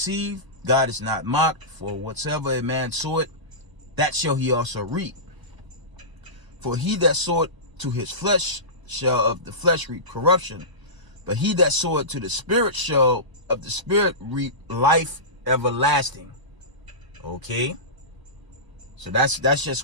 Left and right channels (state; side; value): late; left; 1.0 ms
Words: God is not mocked, for whatsoever a man soweth, that shall he also reap. For he that soweth to his flesh shall of the flesh reap corruption, but he that soweth to the Spirit shall of the Spirit reap life everlasting." Okay? So that's just